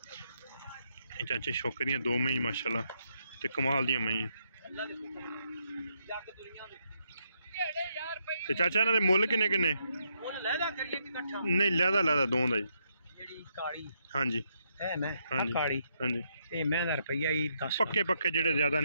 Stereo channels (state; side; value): inverted; both; correlation -0.78